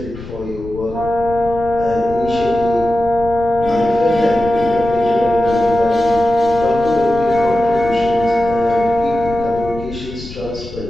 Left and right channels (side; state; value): left; noise; rumble, 13 dB below the sound